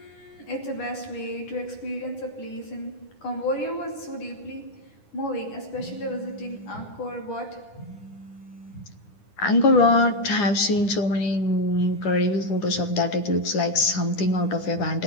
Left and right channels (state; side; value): late; right; 9.9 ms